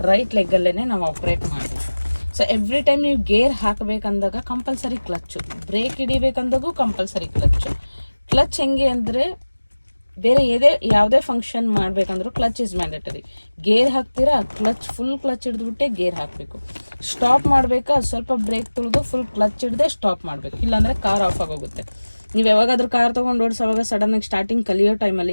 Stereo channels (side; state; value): both; inverted; correlation -1.00